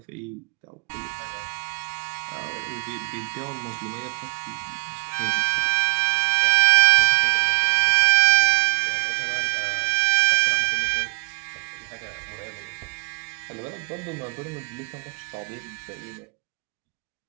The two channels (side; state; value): left; quieter; 34.3 dB